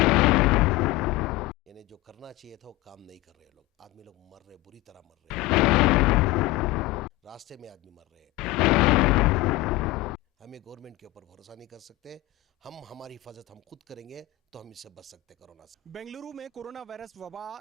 यानी जो करना चाहिए था वो काम नहीं कर रहे लोग। आदमी लोग मर रहे, बुरी तरह मर रहे, रास्ते में आदमी मर रहे हैं। हमें गवर्नमेंट के ऊपर भरोसा नहीं कर सकते। हम हमारी हिफाजत हम खुद करेंगे तो हम इससे बच सकते कोरोना से। बेंगलुरु में कोरोना वायरस वबा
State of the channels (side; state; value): right; quieter; 18.1 dB